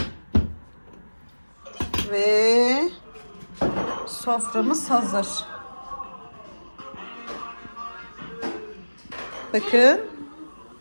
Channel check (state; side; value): inverted; both; correlation -1.00